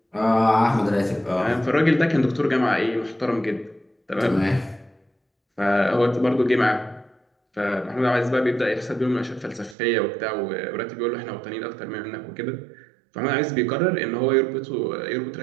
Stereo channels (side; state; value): left; drops out; at 9.8 s